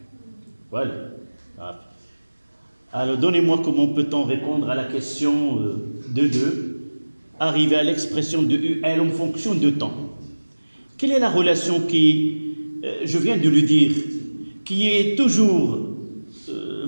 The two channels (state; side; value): inverted; both; correlation -1.00